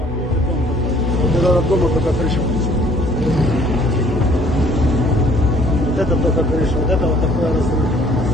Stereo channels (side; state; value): both; normal; correlation 0.57